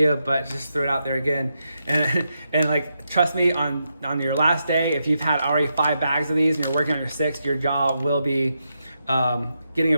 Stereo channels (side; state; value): both; inverted; correlation -0.84